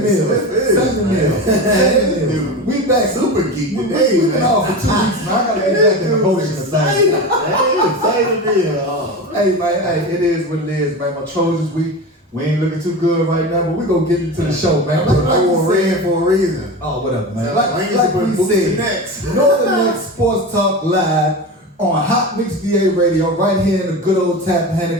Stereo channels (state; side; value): normal; both; correlation 0.26